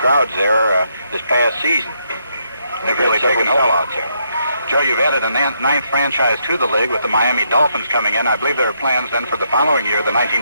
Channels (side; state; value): both; inverted; correlation -0.76